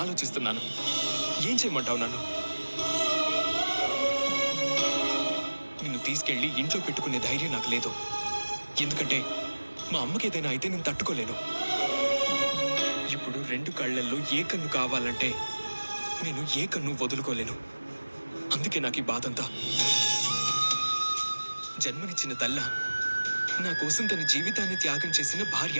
ఆలోచిస్తున్నాను. ఏం చేయమంటావు నన్ను? నిన్ను తీసుకెళ్లి ఇంట్లో పెట్టుకునే ధైర్యం నాకు లేదు. ఎందుకంటే మా అమ్మకి ఏదైనా అయితే నేను తట్టుకోలేను. ఇప్పుడు 2 కళ్ళల్లో ఏ కన్ను కావాలంటే నేను ఏ కన్ను వదులుకోలేను. అందుకే నాకు ఈ బాధంతా. జన్మనిచ్చిన తల్ల, నా కోసం తన జీవితాన్ని త్యాగం చేసిన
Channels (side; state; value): both; inverted; correlation -1.00